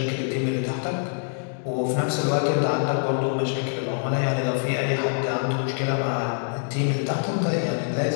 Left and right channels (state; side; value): silent; right; digital silence